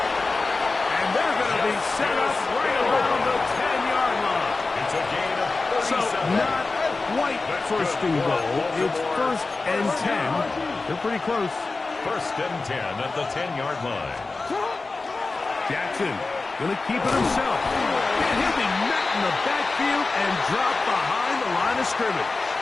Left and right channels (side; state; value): right; quieter; 3.7 dB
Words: And they're going to be set up right around the 10-yard line. It's a gain of 37. So not quite first and goal. It's first and 10. They're pretty close. First and 10 at the 10-yard line. Jackson going to keep it himself. And he'll be met in the backfield and dropped behind the line of scrimmage.